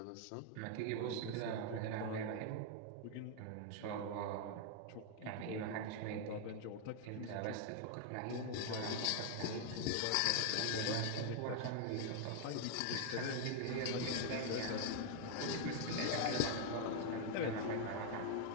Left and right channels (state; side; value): different; both; correlation 0.00